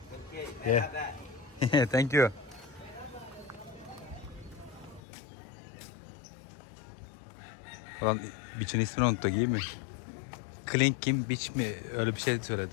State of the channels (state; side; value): drops out; right; at 5.0 s